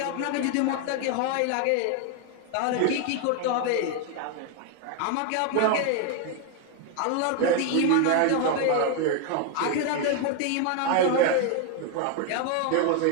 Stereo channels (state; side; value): different; both; correlation 0.01